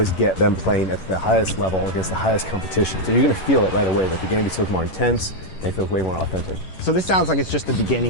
get them playing at the highest level against the highest competition. So you're going to feel it right away that the game just feels more intense and it feels way more authentic. So this sounds like it's just the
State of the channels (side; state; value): right; late; 11 ms